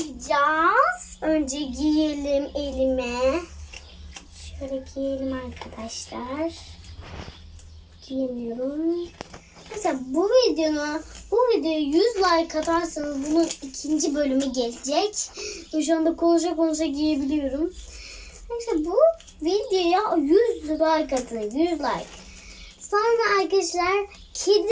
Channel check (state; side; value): identical; both; correlation 1.00